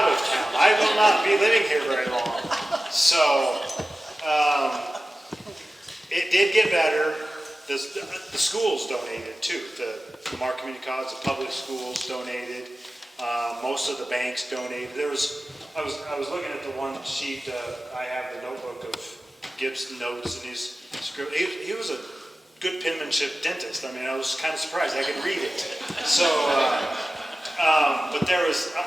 of town. I will not be living here very long. So it did get better. The schools donated too. The Lamar Community College, the public schools donated. Most of the banks donated. I was looking at the one sheet. I have the notebook of Gibb's notes and his script. He was a good penmanship dentist. I mean, I was kind of surprised. I could read it. So, but there was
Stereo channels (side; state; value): both; normal; correlation 0.95